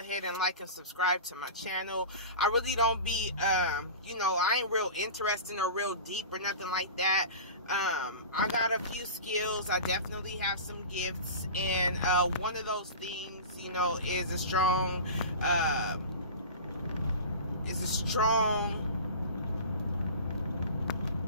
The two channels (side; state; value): both; inverted; correlation -0.32